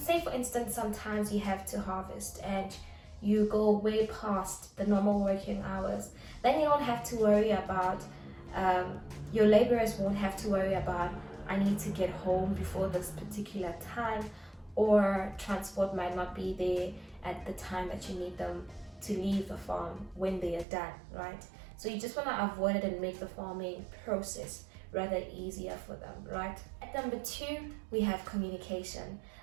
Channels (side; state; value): left; drops out; at 20.7 s